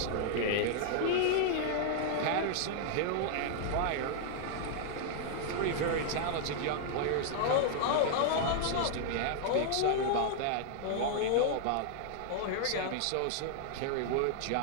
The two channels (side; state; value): both; different; correlation -0.01